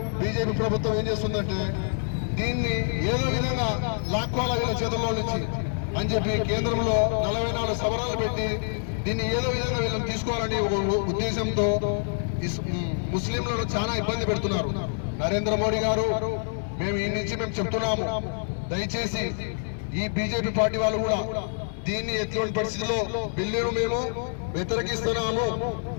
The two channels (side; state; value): right; silent; digital silence